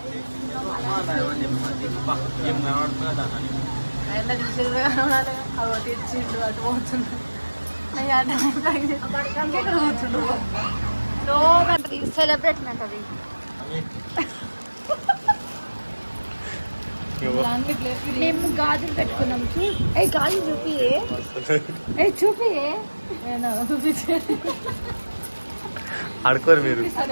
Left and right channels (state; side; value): inverted; both; correlation -1.00